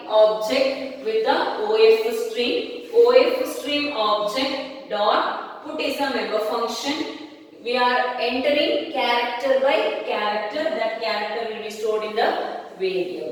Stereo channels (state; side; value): identical; both; correlation 1.00